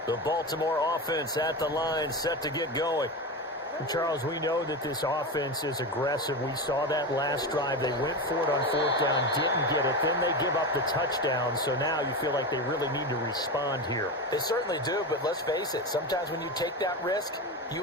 The Baltimore offense at the line, set to get going. Charles, we know that this offense is aggressive. We saw that last drive. They went for it on 4th down, didn't get it. Then they give up the touchdown. So now you feel like they really need to respond here. They certainly do, but let's face it. Sometimes when you take that risk,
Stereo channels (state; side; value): normal; both; correlation 0.20